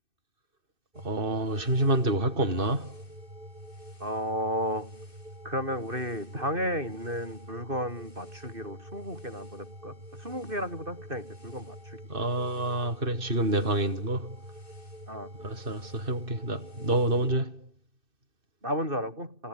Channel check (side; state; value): left; late; 2.6 ms